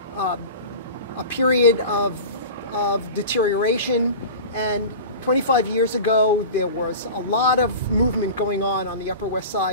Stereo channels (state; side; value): inverted; both; correlation -0.34